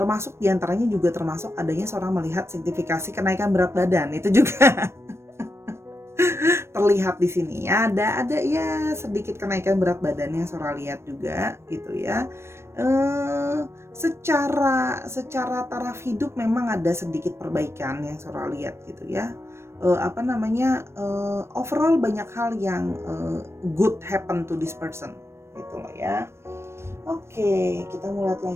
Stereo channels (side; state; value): left; late; 0.13 ms